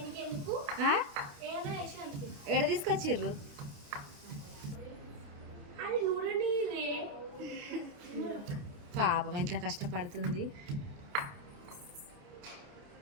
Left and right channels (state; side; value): late; left; 28 ms